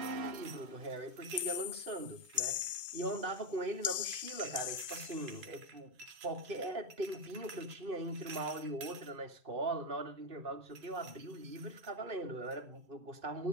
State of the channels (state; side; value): late; left; 1.7 ms